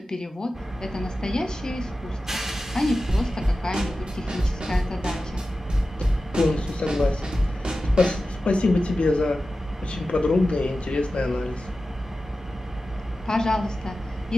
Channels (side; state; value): both; normal; correlation 0.94